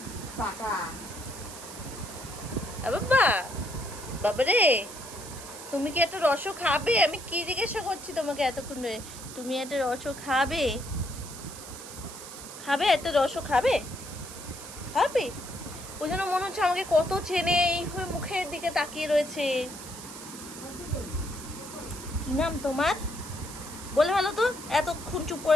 পাকা। বাবা, বাবা রে, তুমি কি একটা রসও খাবে? আমি কি জিজ্ঞাসা করছি তোমাকে এতক্ষণ ধরে, তুমি একটা রসও খাবে? খাবে একটা রসও খাবে? খাবে? ওই জন্য মনে হচ্ছে আমাকে কত চেনে, এইভাবে মুখের দিকে তাকিয়ে রয়েছে। কি নাম তোমার? বলে ভালো তো, এতক্ষণ চুপ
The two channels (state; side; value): noise; right; hiss, 13 dB below the sound